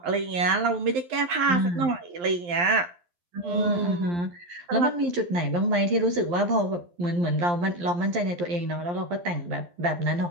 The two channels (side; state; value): left; late; 11 ms